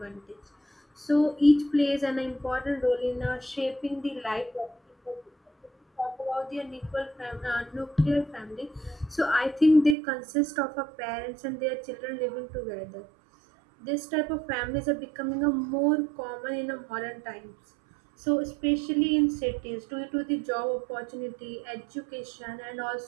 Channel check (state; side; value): drops out; left; at 10.0 s